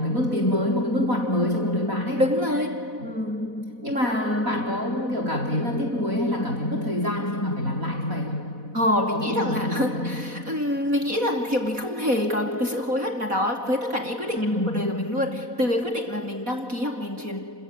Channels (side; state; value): left; late; 4.1 ms